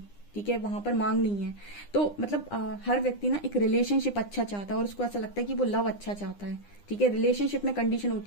ठीक है। वहां पर मांग नहीं है। तो मतलब हर व्यक्ति ना एक रिलेशनशिप अच्छा चाहता है और उसको ऐसा लगता है कि वो लव अच्छा चाहता है, ठीक है। रिलेशनशिप में कंडीशन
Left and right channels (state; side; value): late; right; 9.9 ms